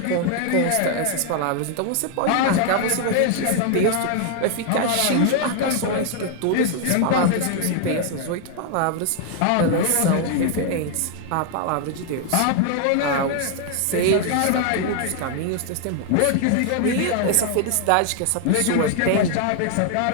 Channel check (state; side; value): different; both; correlation 0.00